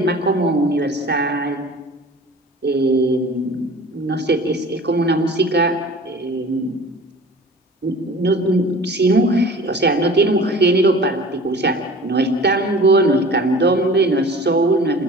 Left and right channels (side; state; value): both; normal; correlation 0.42